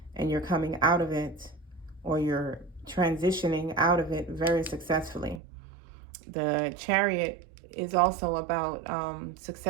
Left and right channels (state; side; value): drops out; left; at 5.4 s